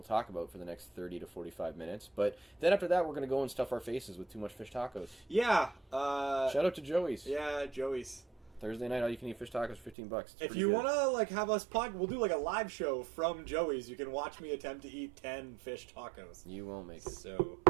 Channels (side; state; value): left; drops out; at 10.0 s